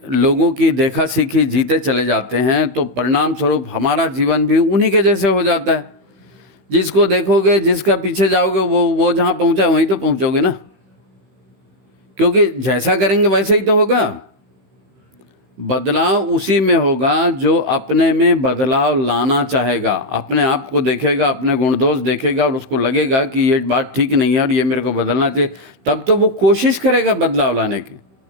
लोगों की देखा सीखी जीते चले जाते हैं, तो परिणाम स्वरूप हमारा जीवन भी उन्हीं के जैसे हो जाता है। जिसको देखोगे, जिसका पीछे जाओगे, वो जहाँ पहुँचा वहीं तो पहुँचोगे ना, क्योंकि जैसा करेंगे वैसे ही तो होगा। बदलाव उसी में होगा जो अपने में बदलाव लाना चाहेगा, अपने आप को देखेगा, अपने गुण दोष देखेगा और उसको लगेगा कि ये बात ठीक नहीं है और ये मेरे को बदलना चाहिए, तब तो वो कोशिश करेगा बदलाव लाने की।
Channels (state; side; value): late; left; 16 ms